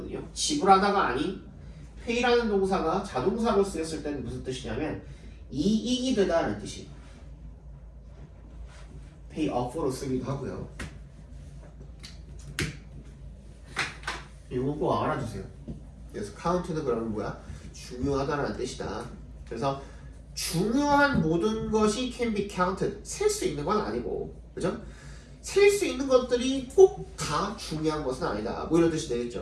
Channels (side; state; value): both; identical; correlation 1.00